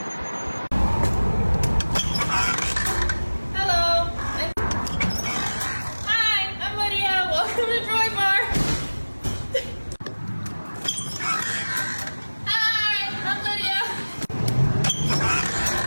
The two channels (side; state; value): both; inverted; correlation -1.00